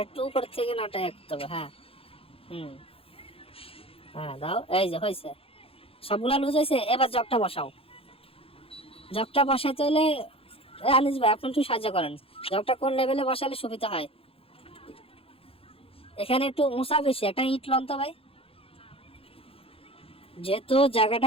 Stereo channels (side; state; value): right; late; 0.27 ms